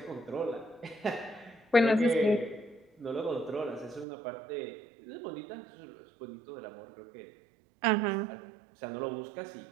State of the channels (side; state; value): left; drops out; at 4.0 s